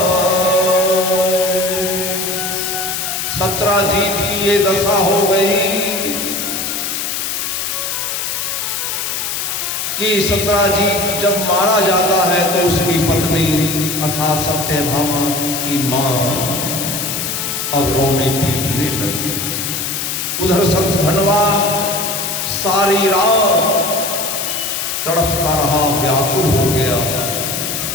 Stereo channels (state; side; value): noise; left; hiss, 2 dB below the sound